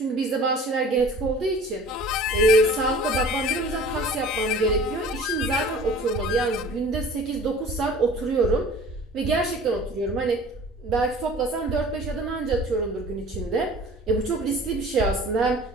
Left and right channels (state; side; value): normal; both; correlation 0.45